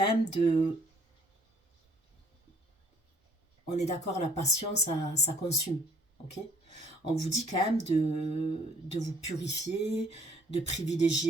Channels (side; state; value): both; normal; correlation 0.60